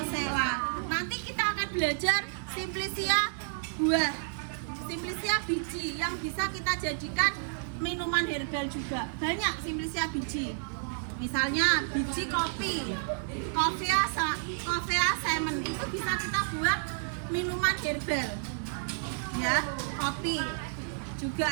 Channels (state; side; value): silent; left; digital silence